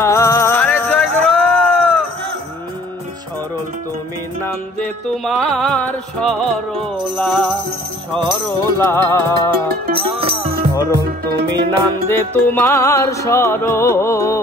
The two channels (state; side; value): normal; both; correlation 0.54